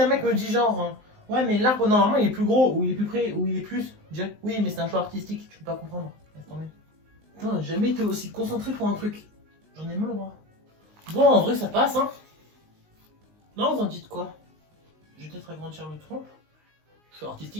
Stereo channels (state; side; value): late; left; 19 ms